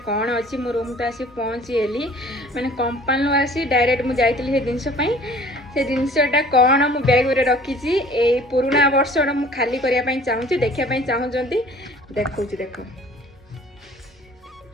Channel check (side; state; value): both; normal; correlation 0.50